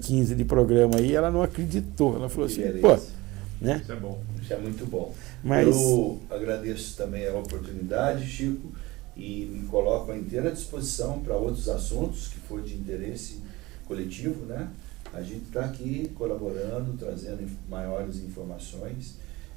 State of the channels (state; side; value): quieter; left; 20.9 dB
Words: de programa aí, ela não acreditou. Ela falou assim, pô, né? Isso é bom, isso é muito bom. Mas eu agradeço também a oportunidade, Chico, e me coloco à inteira disposição para outros assuntos que for de interesse coletivo, né? A gente está aqui colaborando, trazendo maiores informações